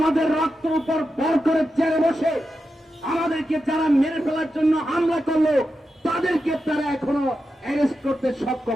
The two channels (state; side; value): normal; both; correlation 0.89